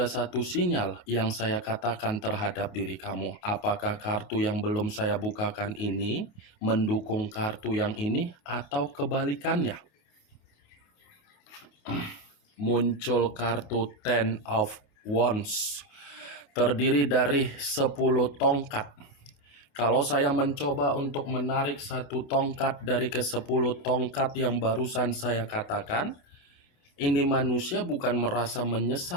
satu sinyal yang saya katakan terhadap diri kamu. Apakah kartu yang belum saya bukakan ini mendukung kartu yang ini atau kebalikannya? Muncul kartu Ten of Wands, terdiri dari 10 tongkat. Kalau saya mencoba untuk menarik satu tongkat dari ke-10 tongkat yang barusan saya katakan, ini manusia bukan merasa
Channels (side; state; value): right; late; 28 ms